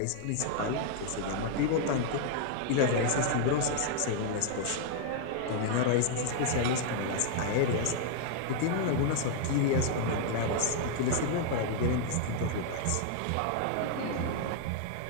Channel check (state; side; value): different; both; correlation 0.00